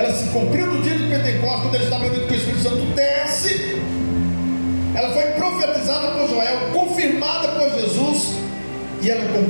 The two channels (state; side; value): inverted; both; correlation -1.00